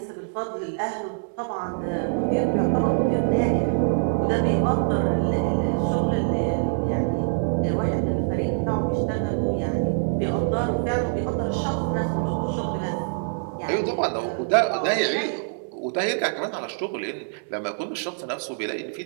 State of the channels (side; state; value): left; silent; 62 dB below the other